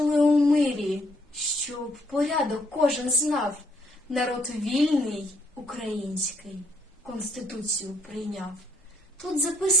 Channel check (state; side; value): normal; both; correlation 0.68